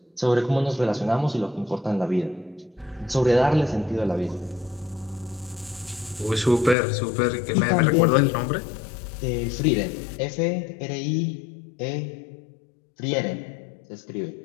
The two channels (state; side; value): drops out; right; at 6.8 s